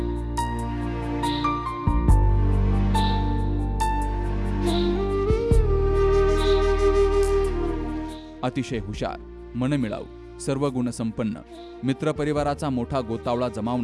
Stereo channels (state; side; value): identical; both; correlation 1.00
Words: अतिशय हुशार, मनमिळाऊ, सर्व गुणसंपन्न, मित्रपरिवाराचा मोठा गोतावळा